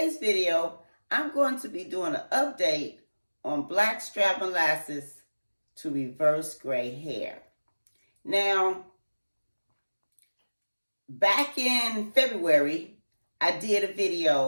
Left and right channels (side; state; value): both; inverted; correlation -1.00